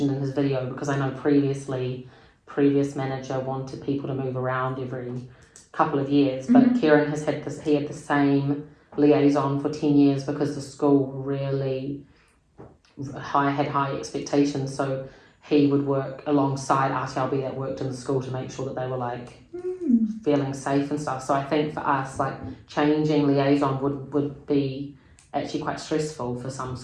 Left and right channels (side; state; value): both; identical; correlation 1.00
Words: in his video, because I know previous manager wanted people to move around every couple of years, but Kieran has had he had the same liaison for 10 years, because the school really had high expectations, so he would work alongside RTLB that worked in the school to make sure that they were feeling safe and stuff. So I think for us, changing liaison would be actually quite stressful for some